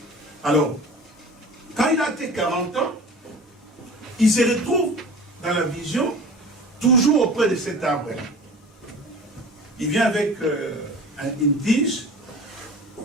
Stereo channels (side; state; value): both; normal; correlation 0.40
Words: Alors, quand il a atteint 40 ans, il se retrouve dans la vision, toujours auprès de cet arbre. Il vient avec une tige,